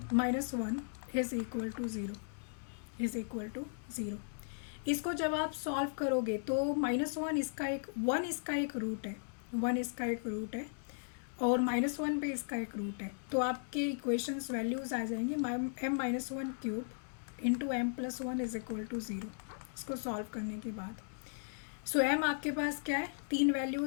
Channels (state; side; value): silent; right; digital silence